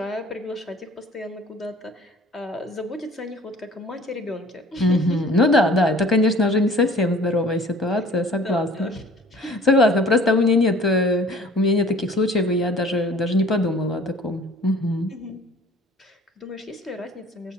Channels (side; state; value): both; normal; correlation 0.49